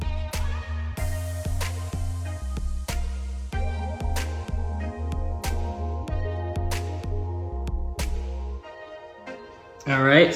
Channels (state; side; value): identical; both; correlation 1.00